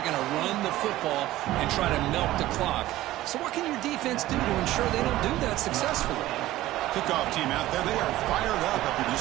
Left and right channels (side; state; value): left; quieter; 15.8 dB